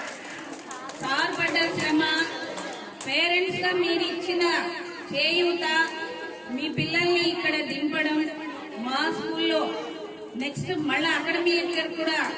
శ్రమ పేరెంట్స్ గా మీరు ఇచ్చిన చేయూత, మీ పిల్లల్ని ఇక్కడ దింపడం, మా స్కూల్లో నెక్స్ట్ మళ్ళా అకాడమిక్ ఇయర్ కూడా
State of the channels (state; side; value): identical; both; correlation 1.00